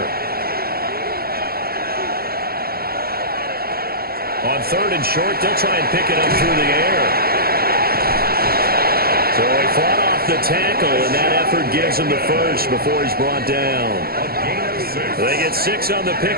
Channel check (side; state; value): left; late; 0.44 ms